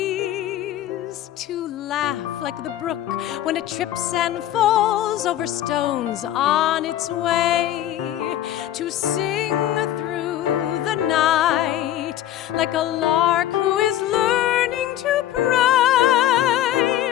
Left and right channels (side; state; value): right; quieter; 12.5 dB